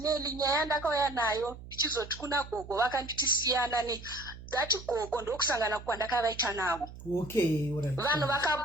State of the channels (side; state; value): right; noise; hum, 15 dB below the sound